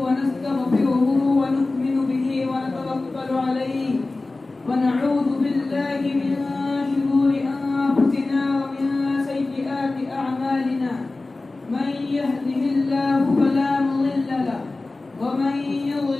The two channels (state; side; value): quieter; right; 3.3 dB